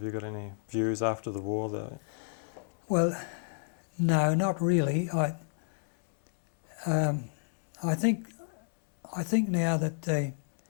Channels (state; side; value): silent; right; digital silence